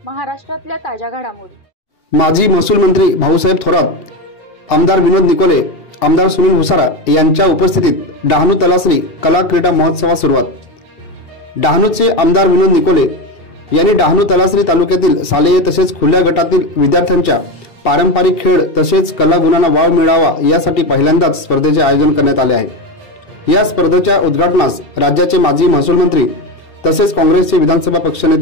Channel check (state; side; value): late; right; 2.7 ms